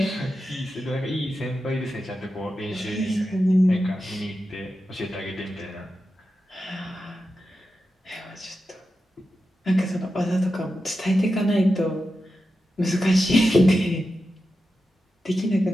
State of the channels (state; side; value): normal; both; correlation 0.91